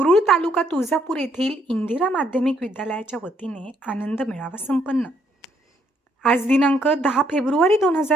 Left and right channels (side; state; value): both; normal; correlation 0.71